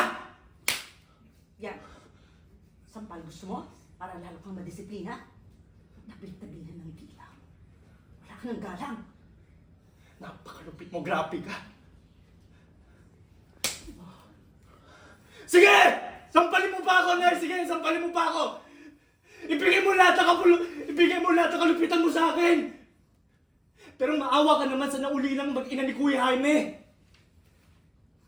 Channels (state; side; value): identical; both; correlation 1.00